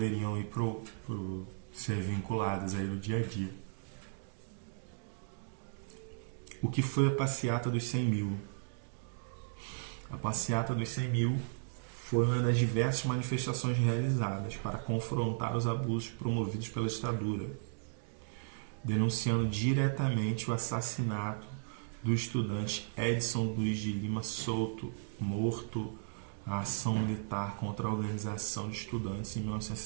ir ser vinculadas aí no dia a dia. O que foi a passeata dos 100 mil? A passeata dos 100 mil foi uma das diversas manifestações realizadas para confrontar os abusos promovidos pela ditadura, denunciando diretamente o assassinato do estudante Edson Luiz de Lima Souto, morto na ação militar contra a Organização de Estudantes em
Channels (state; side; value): silent; left; digital silence